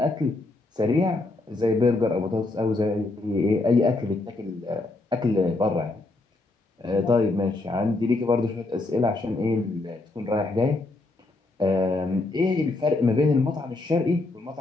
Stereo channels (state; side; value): quieter; right; 3.1 dB